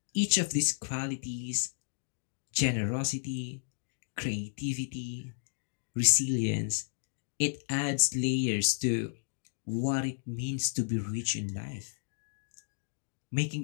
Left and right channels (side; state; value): right; silent; digital silence